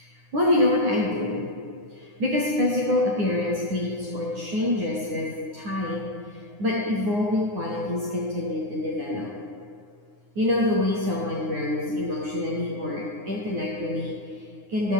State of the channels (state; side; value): late; left; 9.7 ms